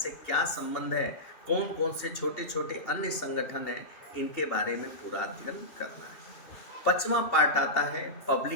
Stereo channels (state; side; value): late; right; 2.8 ms